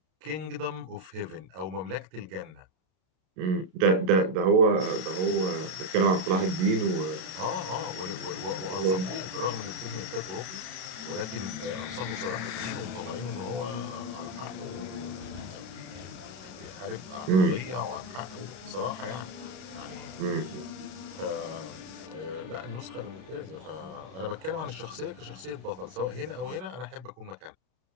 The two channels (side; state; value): left; late; 32 ms